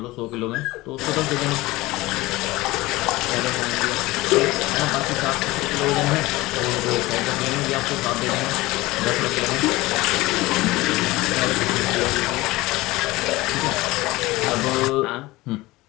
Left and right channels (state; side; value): quieter; right; 19.9 dB